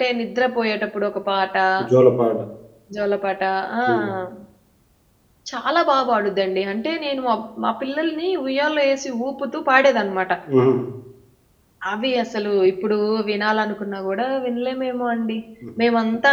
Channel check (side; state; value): both; identical; correlation 1.00